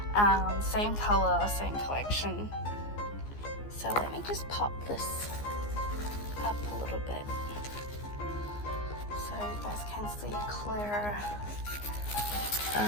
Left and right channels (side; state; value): right; late; 14 ms